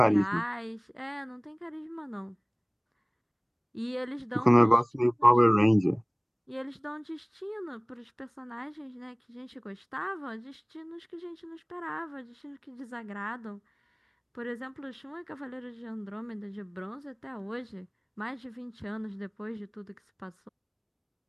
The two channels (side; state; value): both; identical; correlation 1.00